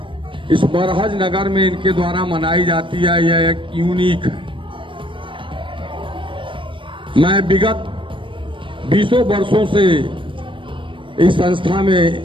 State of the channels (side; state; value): left; late; 0.25 ms